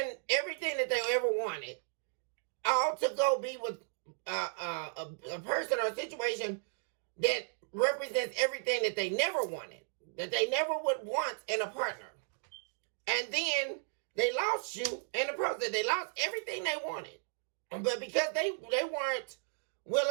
everything that they ever wanted, all to go be with a person or a situation that represents everything that they never wanted, that they never would want in a partner. And then they lost you in the process. They lost everything they wanted. But because they weren't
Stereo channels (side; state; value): left; silent; digital silence